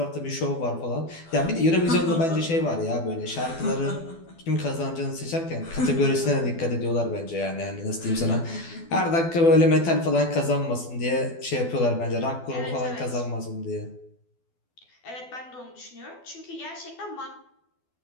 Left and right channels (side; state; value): right; late; 12 ms